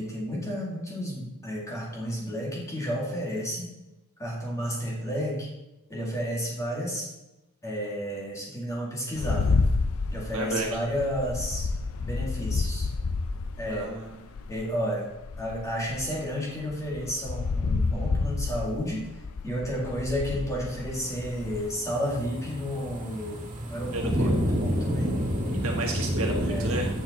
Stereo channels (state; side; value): normal; both; correlation 0.68